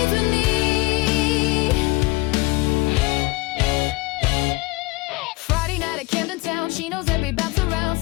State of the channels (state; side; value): quieter; right; 22.6 dB